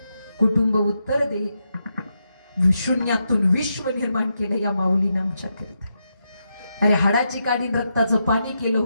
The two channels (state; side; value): inverted; both; correlation -0.84